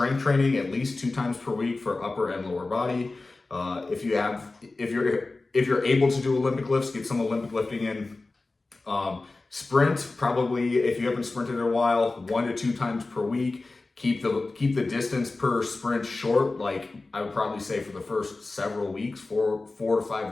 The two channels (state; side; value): quieter; right; 3.4 dB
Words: training at least 2 times per week for upper and lower body. If you're able to do Olympic lifts, get some Olympic lifting in. Sprint, probably if you haven't sprinted in a while, 1 to 2 times per week. Keep the distance per sprint short. Like I would probably say for the first several weeks, 4 to